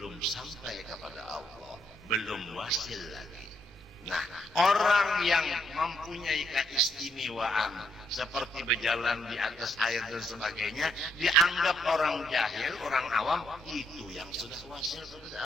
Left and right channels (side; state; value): both; normal; correlation 0.74